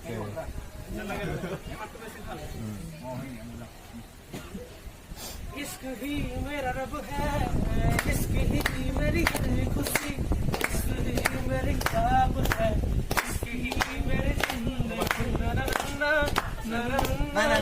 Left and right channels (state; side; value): identical; both; correlation 1.00